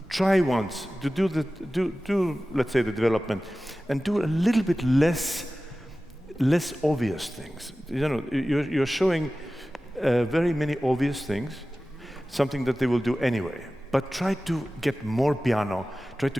try once to do let's say the development, and do a little bit less obvious things. You know, you're showing very many obvious things, something that they will do anyway. But try to get more piano, try to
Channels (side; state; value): both; normal; correlation 0.96